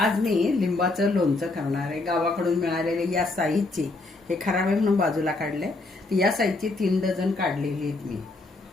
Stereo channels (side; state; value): right; quieter; 3.2 dB